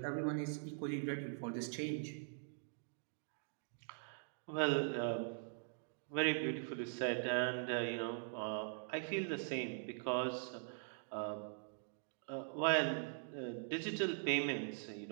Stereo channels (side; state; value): left; silent; digital silence